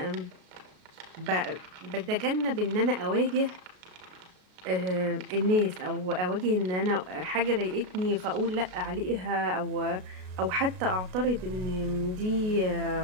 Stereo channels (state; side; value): late; left; 33 ms